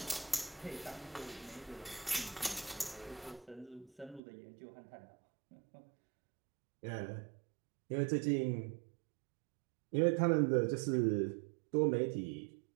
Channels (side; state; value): left; drops out; at 4.2 s